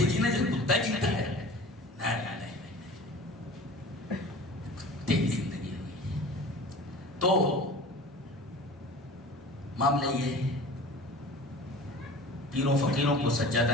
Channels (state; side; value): normal; both; correlation 0.40